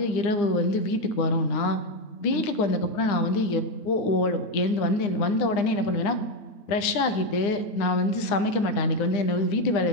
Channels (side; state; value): right; late; 9.8 ms